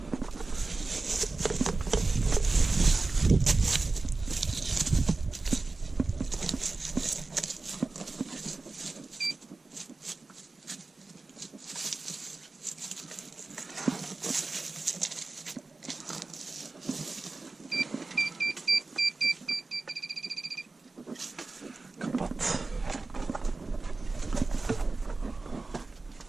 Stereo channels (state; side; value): quieter; left; 3.6 dB